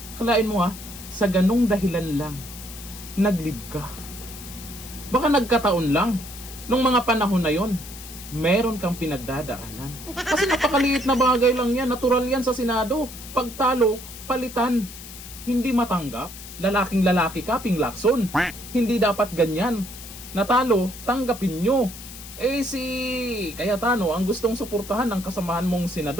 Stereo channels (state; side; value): noise; left; hiss, 14 dB below the sound